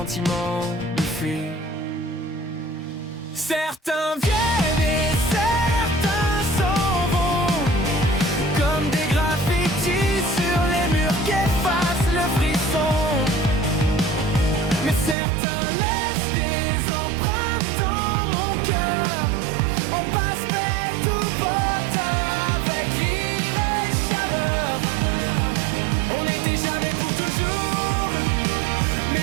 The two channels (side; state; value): left; drops out; at 15.2 s